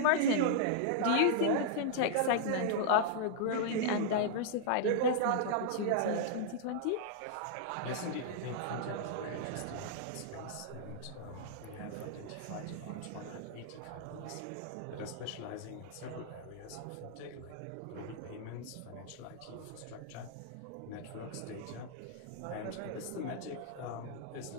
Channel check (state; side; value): different; both; correlation -0.01